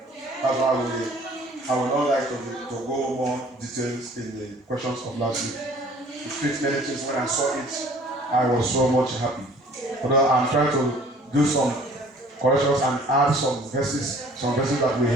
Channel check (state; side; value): normal; both; correlation 0.52